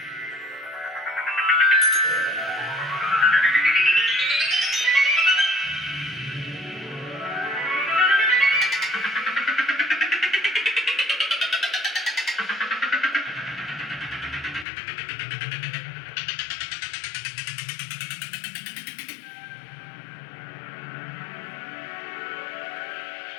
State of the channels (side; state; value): right; drops out; at 14.7 s